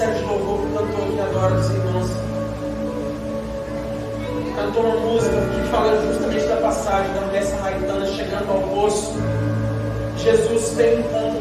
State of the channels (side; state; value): both; identical; correlation 1.00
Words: de louvor que cantou aqui agora dos irmãos, cantou uma música que fala justamente da passagem da mulher samaritana chegando ao poço. Jesus teve um